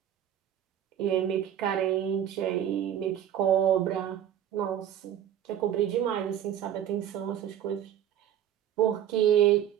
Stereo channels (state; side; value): quieter; left; 10.4 dB